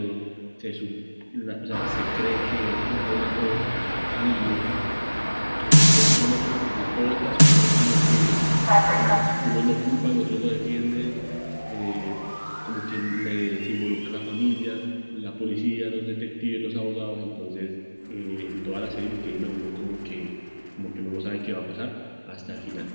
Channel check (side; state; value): both; inverted; correlation -1.00